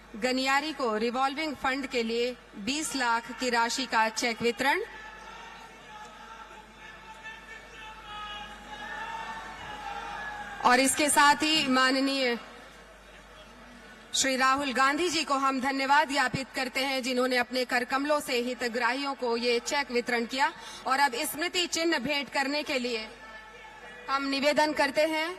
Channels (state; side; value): identical; both; correlation 1.00